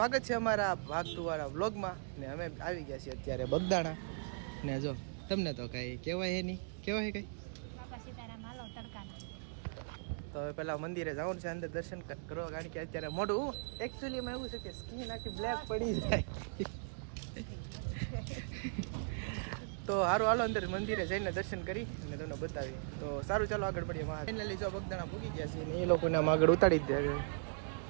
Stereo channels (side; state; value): left; silent; digital silence